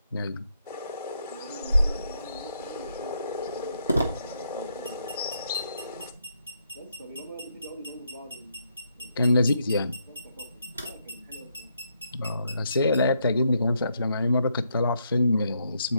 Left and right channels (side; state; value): both; inverted; correlation -0.77